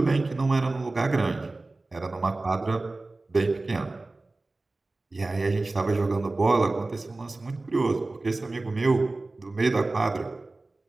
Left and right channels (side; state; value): left; quieter; 3.2 dB